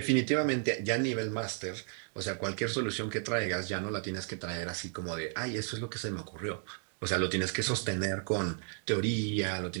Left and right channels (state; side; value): silent; left; 55 dB below the other